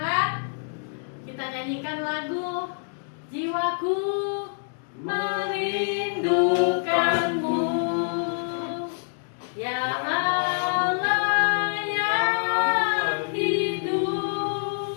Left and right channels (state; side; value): silent; right; digital silence